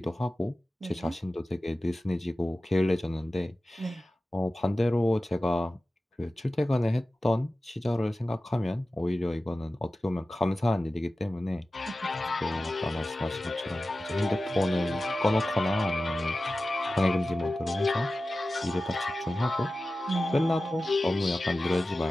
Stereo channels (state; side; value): normal; both; correlation 0.95